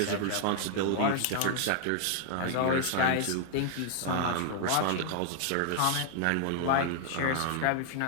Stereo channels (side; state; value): both; different; correlation -0.01